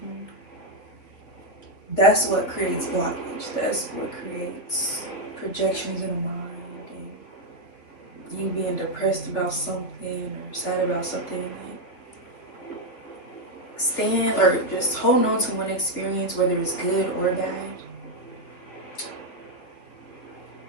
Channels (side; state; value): right; late; 3.6 ms